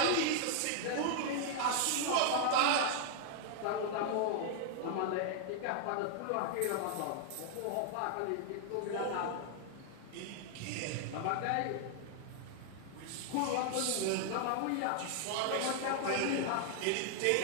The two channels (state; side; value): different; both; correlation -0.01